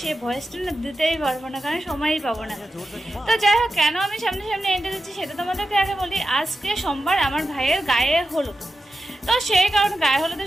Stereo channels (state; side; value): normal; both; correlation 0.90